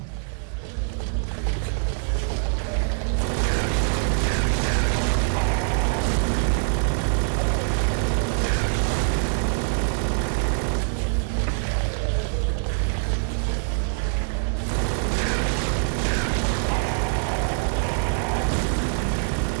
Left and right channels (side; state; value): left; silent; 62 dB below the other